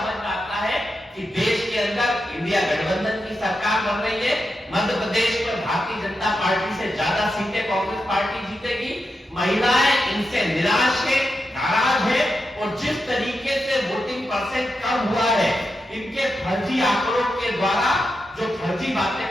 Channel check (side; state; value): both; normal; correlation 0.88